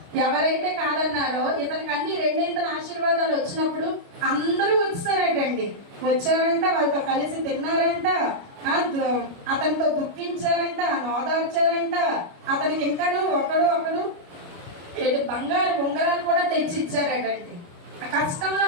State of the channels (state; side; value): late; left; 29 ms